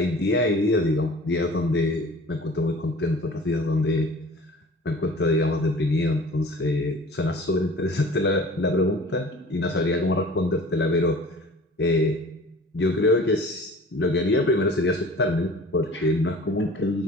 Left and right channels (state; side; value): normal; both; correlation 0.45